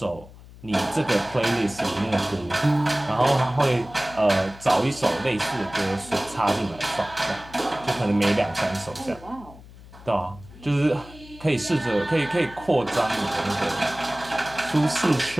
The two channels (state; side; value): noise; left; hum, 19 dB below the sound